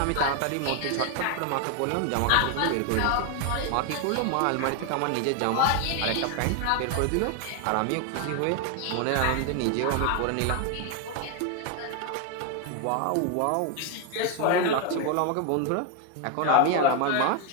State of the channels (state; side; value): different; both; correlation 0.01